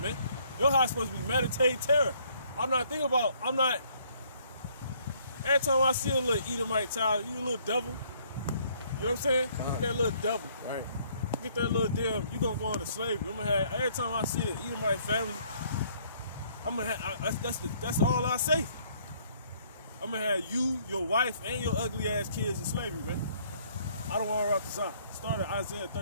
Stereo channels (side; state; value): both; inverted; correlation -0.63